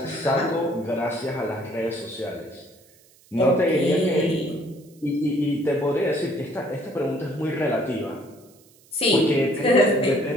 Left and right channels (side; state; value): right; noise; hiss, 29 dB below the sound